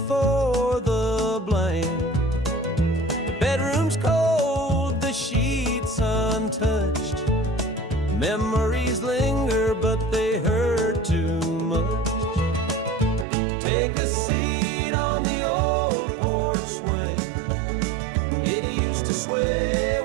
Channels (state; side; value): drops out; left; at 13.2 s